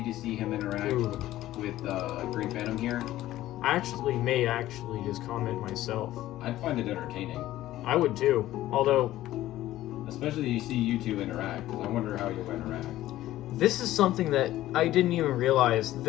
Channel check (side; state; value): right; quieter; 14.7 dB